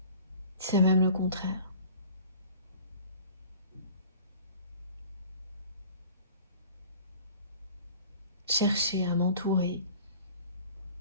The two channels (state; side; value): inverted; both; correlation -0.44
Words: C'est même le contraire. Chercher à m'entourer